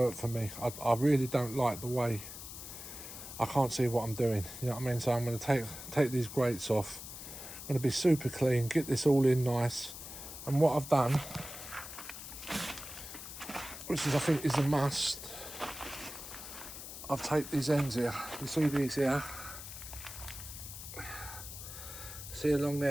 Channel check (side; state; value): left; noise; hiss, 11 dB below the sound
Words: for me. I really don't like the way. I can't see what I'm doing. You know what I mean? So I'm going to take these grates off. I'm going to be super clean, get this all in nice. And what I've done, which is I think is a must, I've taped these ends here. You see these here? See along